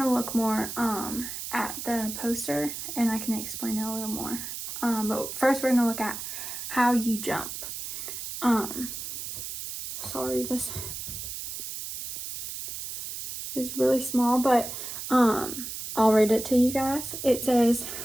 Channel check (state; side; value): noise; right; hiss, 7 dB below the sound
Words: to look more at the poster and I can explain it a little more. But first we're going to look at how you jump. Sorry, this is really small, but I'll read it to you guys. It says,